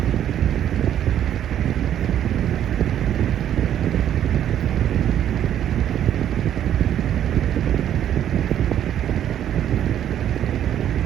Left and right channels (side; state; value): left; quieter; 10.5 dB